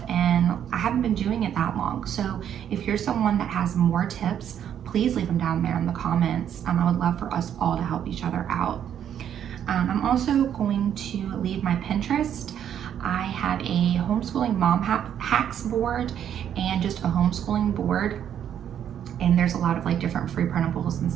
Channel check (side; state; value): left; quieter; 9.5 dB